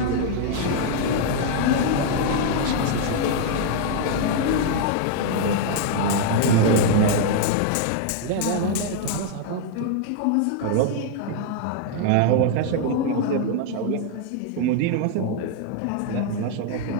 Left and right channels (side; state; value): both; different; correlation 0.00